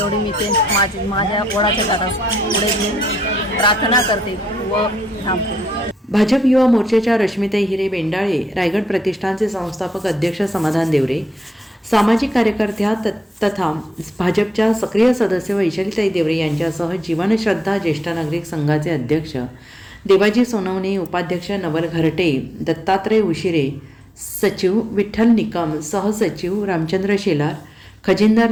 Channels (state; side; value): normal; both; correlation 0.82